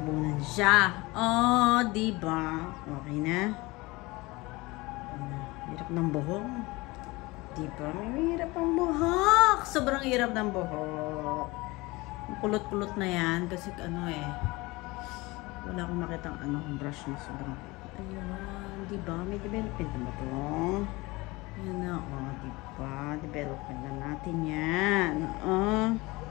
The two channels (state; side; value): quieter; right; 22.5 dB